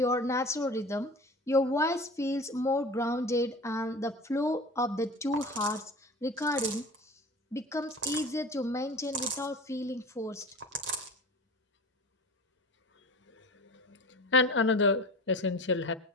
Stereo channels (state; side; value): normal; both; correlation 0.36